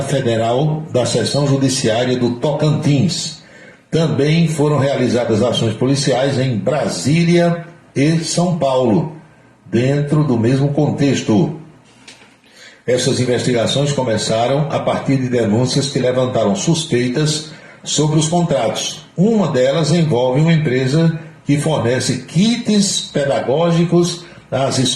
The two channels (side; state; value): both; identical; correlation 1.00